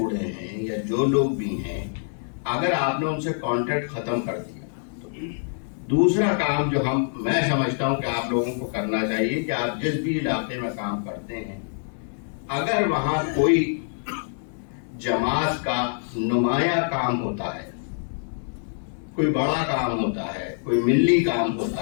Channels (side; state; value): right; silent; digital silence